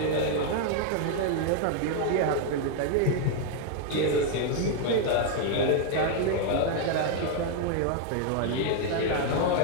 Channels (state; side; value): different; both; correlation 0.00